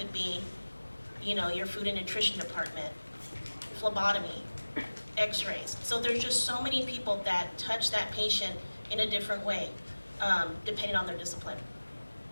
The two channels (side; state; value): both; inverted; correlation -1.00